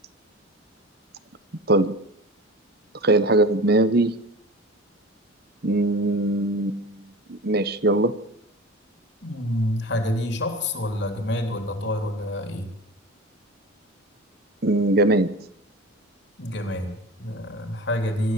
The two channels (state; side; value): normal; both; correlation 0.35